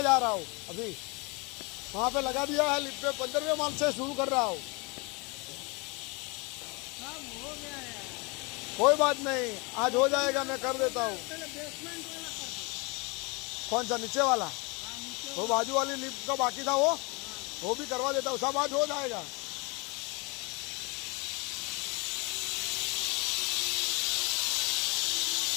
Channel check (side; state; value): right; quieter; 29.2 dB